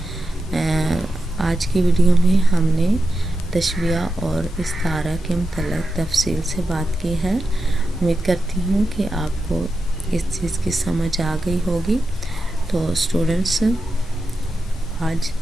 آج کی ویڈیو میں ہم نے تشبیہ اور استعارہ کے متعلق تفصیل سے بات کی ہے۔ امید کرتی ہوں کہ آپ کو اس چیز کی سمجھ آ گئی ہوگی۔ تو اسٹوڈنٹس، آج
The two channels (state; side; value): normal; both; correlation 0.89